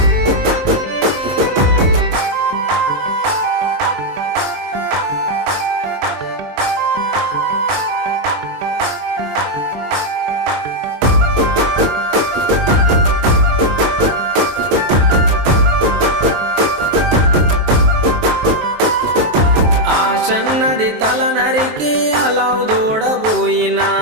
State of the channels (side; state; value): left; late; 23 ms